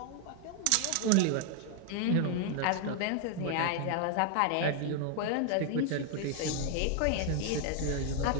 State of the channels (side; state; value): both; different; correlation 0.00